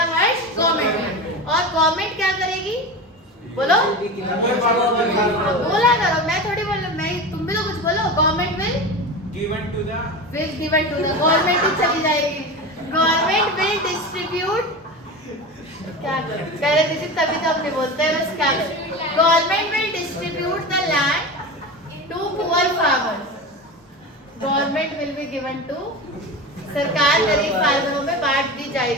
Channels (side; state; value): both; normal; correlation 0.27